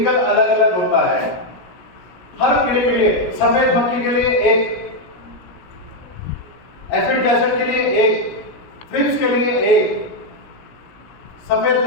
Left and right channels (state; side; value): late; right; 16 ms